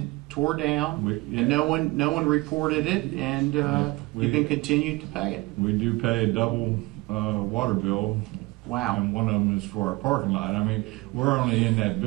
tore down, and no one reported it, and you can continue to pay it. We do pay a double water bill. Wow. And one of them is for our parking lot. I mean, we're only in that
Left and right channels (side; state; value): left; quieter; 22.9 dB